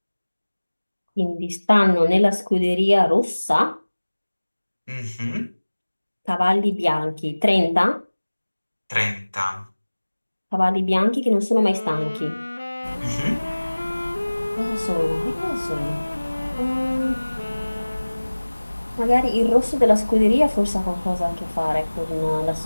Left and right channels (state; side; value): inverted; both; correlation -1.00